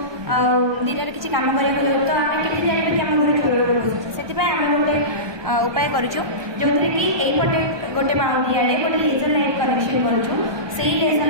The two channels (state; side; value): late; left; 1.2 ms